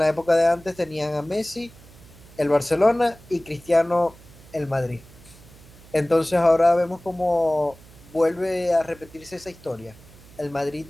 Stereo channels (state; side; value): noise; right; hum, 22 dB below the sound